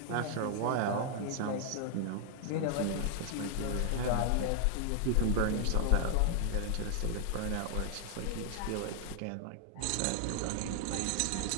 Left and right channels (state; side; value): different; both; correlation 0.00